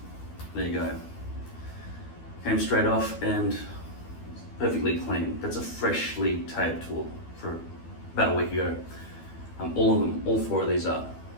there you go. Came straight off and perfectly clean. That's a freshly taped tool for about a week ago. All of them, all 4 of these are.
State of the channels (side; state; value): right; late; 12 ms